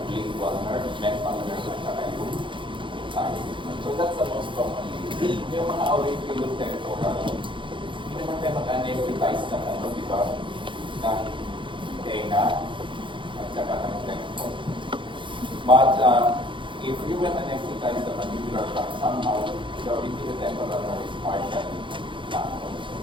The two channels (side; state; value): left; late; 0.24 ms